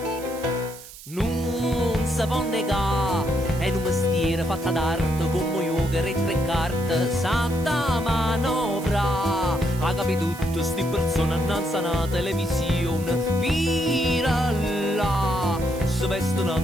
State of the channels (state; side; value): noise; right; hiss, 16 dB below the sound